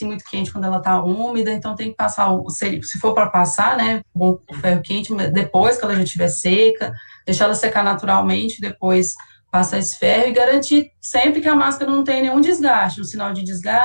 muito quente quando ela está úmida, então tem que passar, se for para passar, né, o ferro quente, depois que ela já estiver seca, deixar ela secar naturalmente, depois passar esse ferro e garantir sempre que a máscara não tem nenhum desgaste, um sinal de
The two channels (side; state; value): both; inverted; correlation -1.00